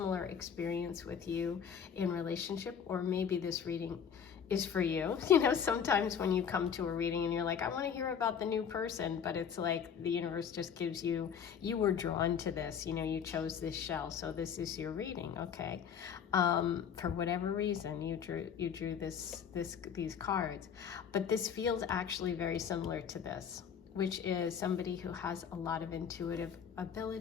experience with you in relationship, or maybe this reading is for you. You know, sometimes when you come to a reading and you're like, I want to hear about the new person, but it's like the universe just gives you, you were drawn to this, you know, you chose this shell, so this is your reading, okay? For whatever reason, you drew these cards, but this feels actually very similar to this, which is somebody who has a lot of intuitive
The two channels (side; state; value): right; quieter; 7.6 dB